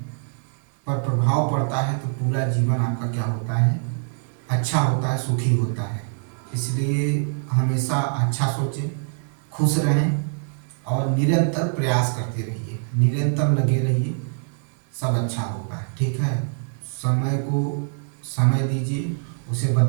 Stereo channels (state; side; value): silent; left; digital silence